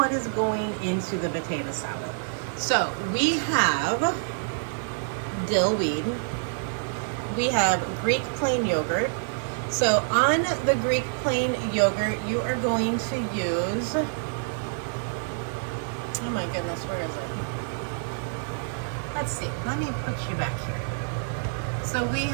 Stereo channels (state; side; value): silent; left; digital silence